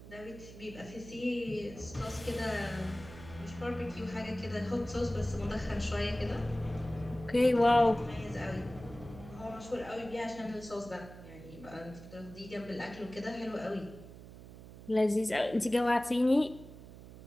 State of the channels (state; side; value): noise; right; hum, 16 dB below the sound